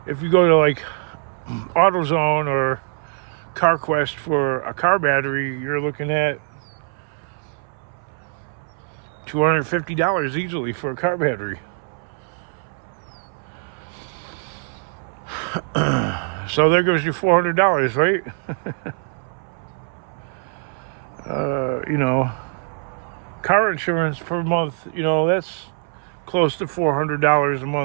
If you go to like AutoZone or CarQuest for a car battery, you're looking at $250 easily for a car battery. So there goes your $400, right? You know, car insurance per month, you know, that's close to $400 a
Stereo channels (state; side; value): silent; left; 62 dB below the other